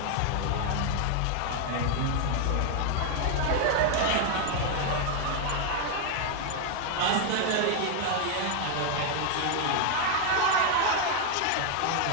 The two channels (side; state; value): both; different; correlation 0.01